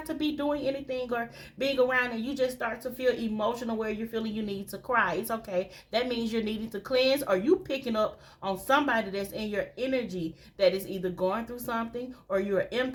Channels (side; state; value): both; identical; correlation 1.00